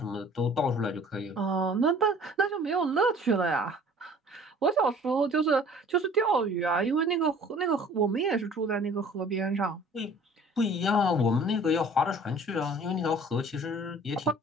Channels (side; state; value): both; normal; correlation 0.50